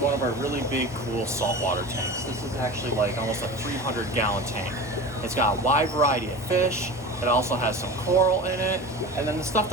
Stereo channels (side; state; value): both; normal; correlation 0.32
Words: of our really big, cool saltwater tanks. This is actually like almost a 300-gallon tank. It's got a wide variety of fish. It also has some coral in it. And then the stuff